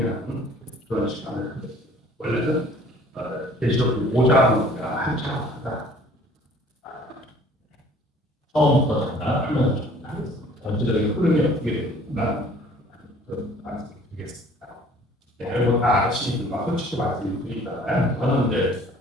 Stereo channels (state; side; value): normal; both; correlation 0.53